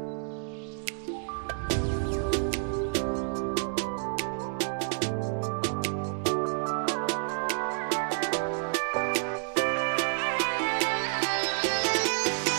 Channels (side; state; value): left; silent; digital silence